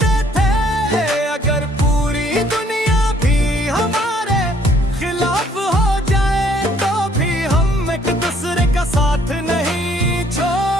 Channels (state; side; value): normal; both; correlation 0.63